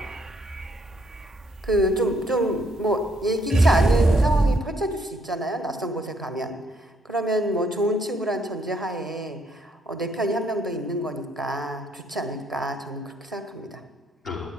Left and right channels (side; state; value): both; normal; correlation 0.70